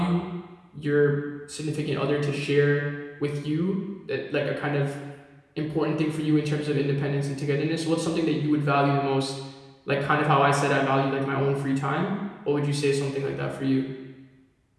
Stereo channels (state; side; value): identical; both; correlation 1.00